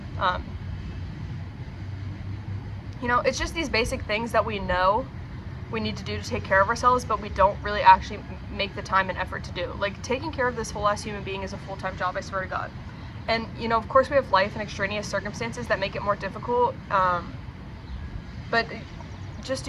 It's just these basic things that we know we need to do to take care of ourselves, but we don't really actually make the time and effort to do. Like, taking care of this whole ass human being is a full-time job, I swear to God. And, of course we have life and extraneous circumstances that make it more difficult, but just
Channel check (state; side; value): identical; both; correlation 1.00